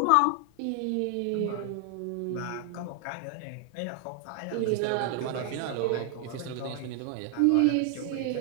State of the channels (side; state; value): both; different; correlation 0.00